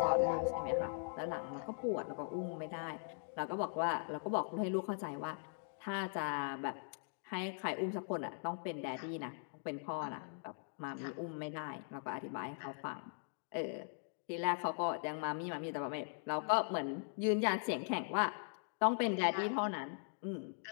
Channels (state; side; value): silent; right; digital silence